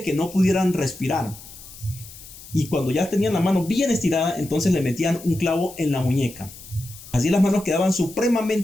que no pudieran respirar. Y cuando ya tenían la mano bien estirada, entonces le metían un clavo en la muñeca. Así las manos quedaban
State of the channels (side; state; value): left; noise; hiss, 17 dB below the sound